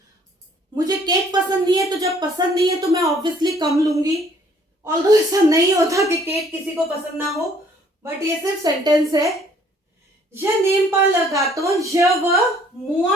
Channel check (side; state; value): both; normal; correlation 0.60